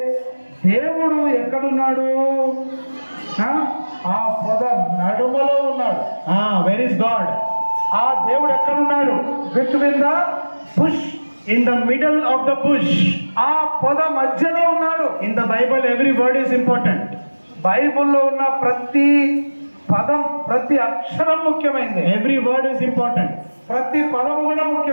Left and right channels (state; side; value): inverted; both; correlation -1.00